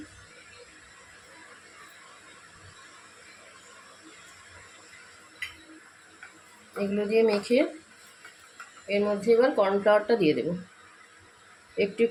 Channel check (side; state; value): both; identical; correlation 1.00